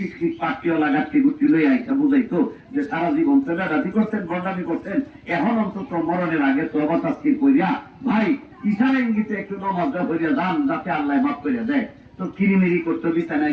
পার্টিও লাগাতে গুটি লই আইসা বুঝাইতো যে সারা জীবন তো বেড়াতি করতেন, বন্ডামি করতেন, এখন অন্তত মরণের আগে তওবা তাসকির কইরা ভাই ইশারা ইঙ্গিতে একটু নামাজ পড়িয়া যান, যাতে আল্লাহ মাফ করে দেয়। তো কিরিমিরি করতো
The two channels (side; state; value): both; identical; correlation 1.00